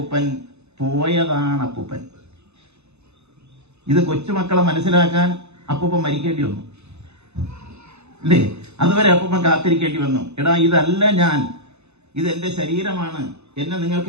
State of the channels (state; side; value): late; left; 0.81 ms